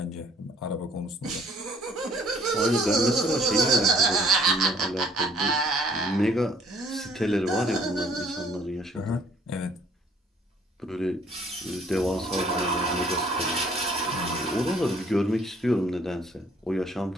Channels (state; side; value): normal; both; correlation 0.60